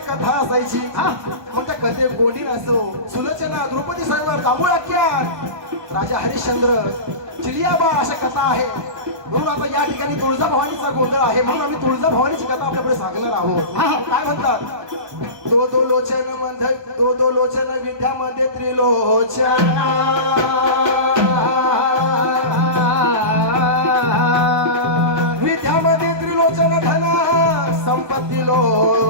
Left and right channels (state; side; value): late; left; 1.2 ms